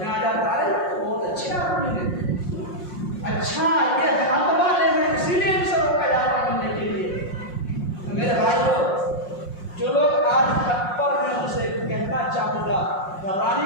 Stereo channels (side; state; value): right; late; 5.6 ms